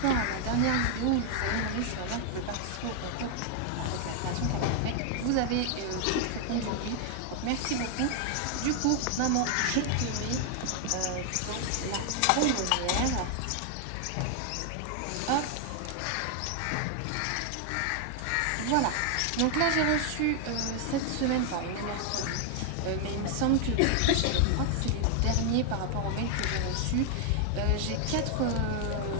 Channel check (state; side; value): different; both; correlation 0.00